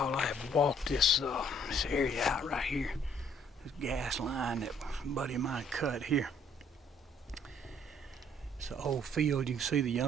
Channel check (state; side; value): normal; both; correlation 0.62